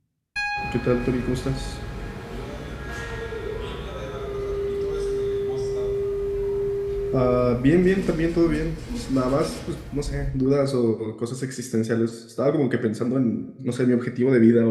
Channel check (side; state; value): both; identical; correlation 1.00